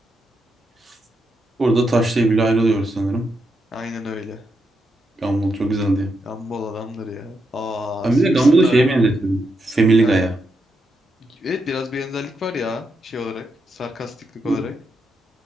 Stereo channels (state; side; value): normal; both; correlation 0.83